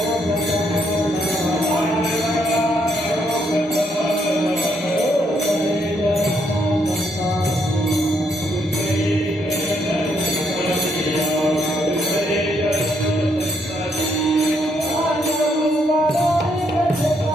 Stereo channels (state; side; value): normal; both; correlation 0.74